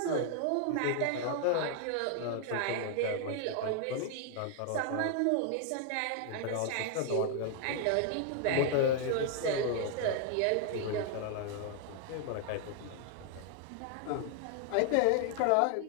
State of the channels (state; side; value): different; both; correlation 0.00